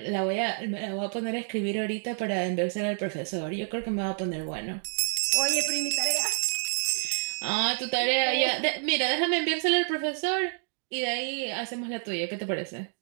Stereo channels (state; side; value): silent; left; 59 dB below the other